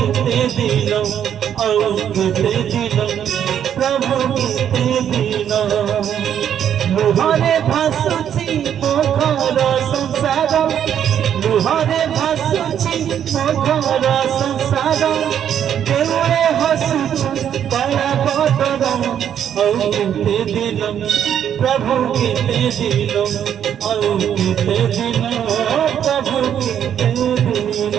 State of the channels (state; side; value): quieter; left; 9.4 dB